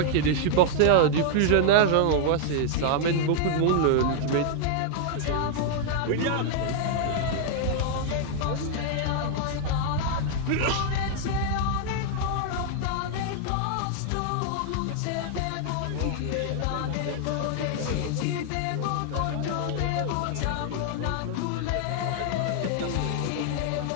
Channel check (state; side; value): different; both; correlation -0.01